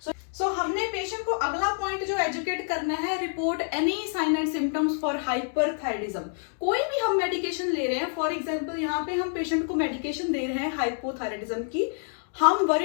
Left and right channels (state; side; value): silent; right; digital silence